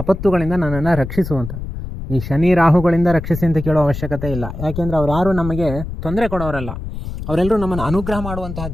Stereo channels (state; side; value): noise; left; rumble, 8 dB below the sound